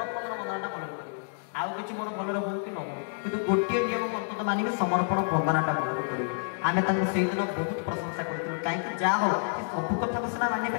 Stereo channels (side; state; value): right; silent; digital silence